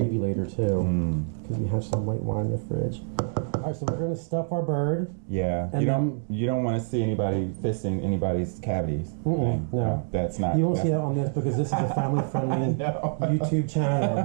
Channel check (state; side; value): silent; left; digital silence